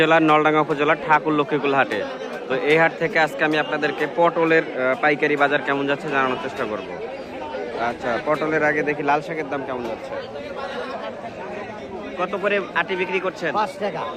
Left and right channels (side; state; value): both; identical; correlation 1.00